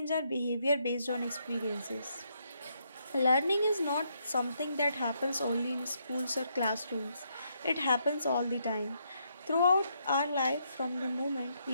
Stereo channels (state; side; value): inverted; both; correlation -0.76